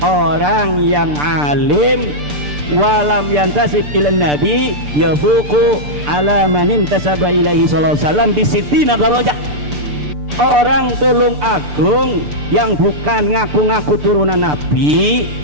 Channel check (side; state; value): left; late; 6.8 ms